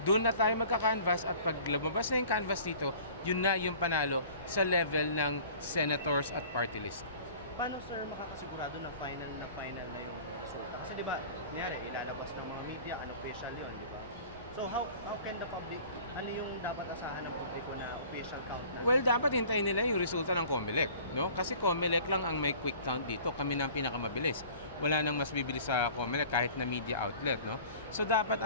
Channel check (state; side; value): inverted; both; correlation -0.46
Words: doon na tayo magka-canvas at pag lumabas na yung canvas dito, yun na yung panalo sa level ng senators at party list. Paano sir makakasigurado na final na yung resulta? Kasi di ba, nangyari, ilalabas ng mga media, official yun. So how can the public, ano yung dapat asahan ng publiko na official count? Well, dapat hintayin nila yung resulta ng COMELEC, no? Kasi COMELEC lang ang may quick count dito. Kami na ang pinakamabilis. Wala nang mas bibilis sa COMELEC kahit na media outlet, no? So dapat